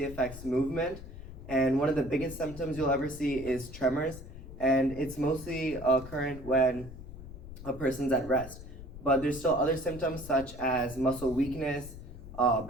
affects movement, and one of the biggest symptoms you'll ever see is tremors, and it's mostly occurrent when a person's at rest. But there's still other symptoms such as muscle weakness,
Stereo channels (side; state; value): left; noise; rumble, 13 dB below the sound